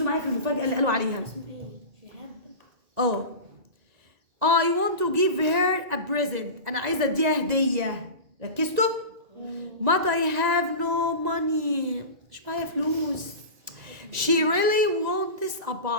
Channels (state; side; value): late; left; 1.9 ms